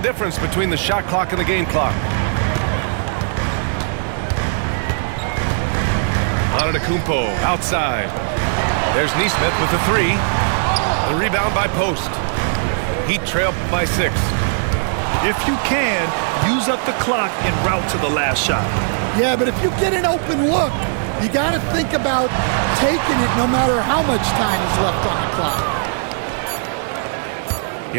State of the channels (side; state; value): left; silent; digital silence